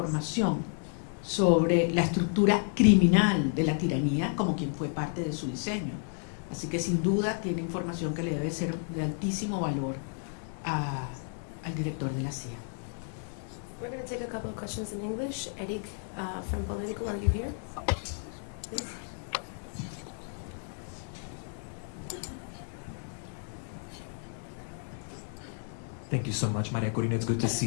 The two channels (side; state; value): right; silent; 57 dB below the other